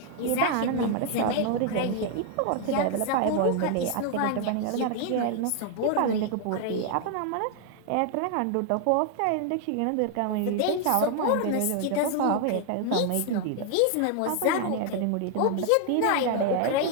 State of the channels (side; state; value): both; different; correlation 0.00